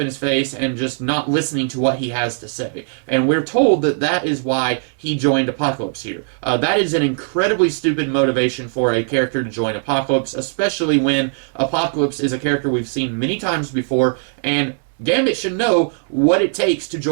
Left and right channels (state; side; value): silent; left; digital silence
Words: in his face and just not listening to what he has to say. And we're told that that is why he joined Apocalypse here. That is an incredibly stupid motivation for a character to join Apocalypse, especially when Apocalypse is a character we've seen many times before, and Gambit should know what it takes to